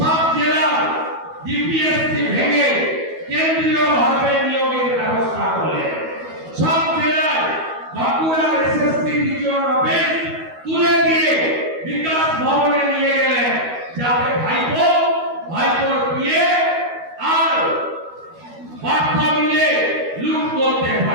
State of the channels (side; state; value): left; late; 12 ms